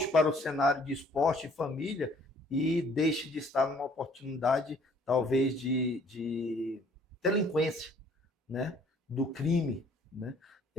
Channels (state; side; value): normal; both; correlation 0.59